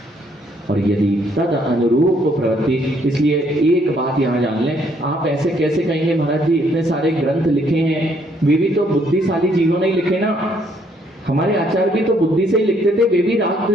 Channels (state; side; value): normal; both; correlation 0.68